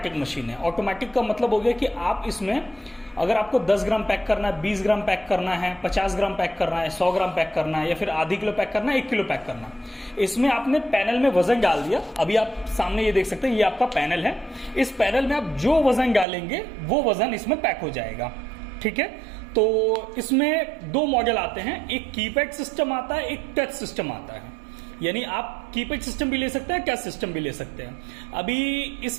मशीन है। ऑटोमेटिक का मतलब हो गया कि आप इसमें अगर आपको 10 ग्राम पैक करना है, 20 ग्राम पैक करना है, 50 ग्राम पैक करना है, 100 ग्राम पैक करना है, या फिर आधी किलो पैक करना है, 1 किलो पैक करना है, इसमें आपने पैनल में वजन डाल दिया। अभी आप सामने ये देख सकते हैं, ये आपका पैनल है। इस पैनल में आप जो वजन डालेंगे वो वजन इसमें पैक हो जाएगा। ठीक है, तो इसमें 2 मॉडल आते हैं, एक कीपैड सिस्टम आता है, एक टच सिस्टम आता है। यानी आप कीपैड सिस्टम भी ले सकते हैं, टच सिस्टम भी ले सकते हैं। अभी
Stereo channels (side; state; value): left; drops out; at 16.2 s